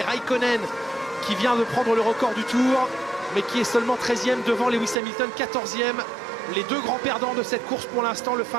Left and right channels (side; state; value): left; drops out; at 5.0 s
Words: Raikkonen qui vient de prendre le record du tour, mais qui est seulement 13e devant Lewis Hamilton, 14e. Les deux grands perdants de cette course pour l'instant, le